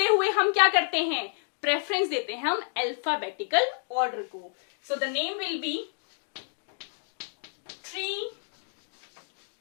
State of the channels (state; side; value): silent; right; digital silence